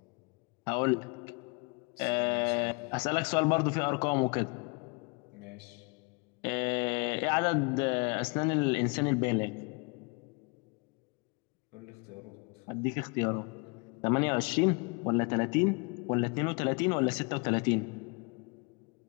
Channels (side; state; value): right; quieter; 31.8 dB